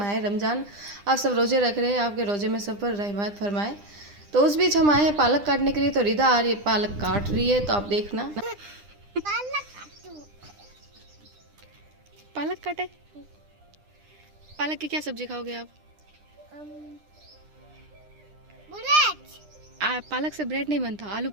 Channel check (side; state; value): left; late; 9.9 ms